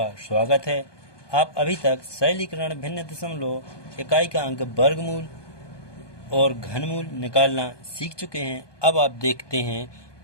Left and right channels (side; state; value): right; late; 1.2 ms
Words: स्वागत है। आप अभी तक सरलीकरण भिन्न दशमलव इकाई का अंक वर्गमूल और घनमूल निकालना सीख चुके हैं। अब आप देखते हैं